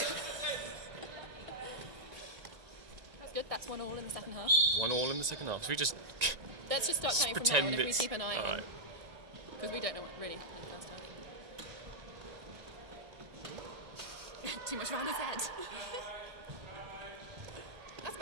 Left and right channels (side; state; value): left; late; 1.9 ms